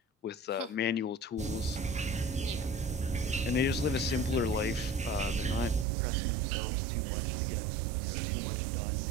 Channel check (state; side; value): drops out; left; at 5.9 s